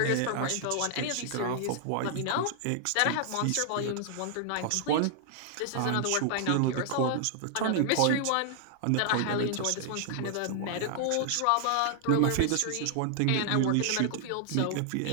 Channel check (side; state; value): both; different; correlation 0.00